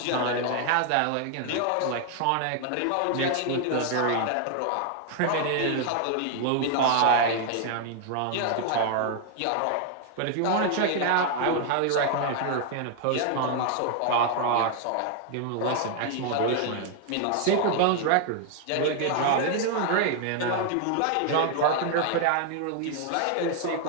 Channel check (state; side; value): different; both; correlation 0.00